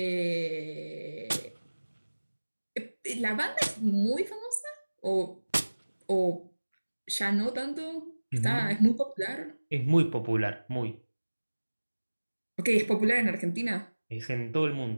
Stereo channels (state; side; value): inverted; both; correlation -1.00